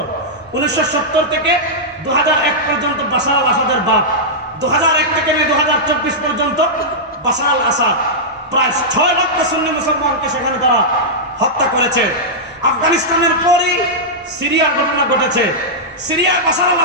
1970 থেকে 2001 পর্যন্ত বাশার আল আসাদের বাপ, 2001 থেকে 2024 পর্যন্ত বাশার আল আসাদ প্রায় 6 লক্ষ সুন্নি মুসলমানকে সেখানে তারা হত্যা করেছে। আফগানিস্তানের পরই সিরিয়ার ঘটনা ঘটেছে, সিরিয়ার বাশার আল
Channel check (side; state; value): both; normal; correlation -0.10